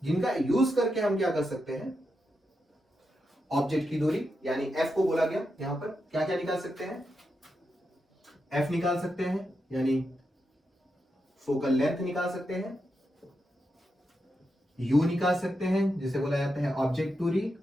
जिनका यूज करके हम क्या कर सकते हैं, ऑब्जेक्ट की दूरी यानी f को बोला गया, यहां पर क्या क्या निकाल सकते हैं, f निकाल सकते हैं, यानी फोकल लेंथ निकाल सकते हैं, u निकाल सकते हैं जिसे बोला जाता है ऑब्जेक्ट दूरी,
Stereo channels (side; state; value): both; normal; correlation 0.86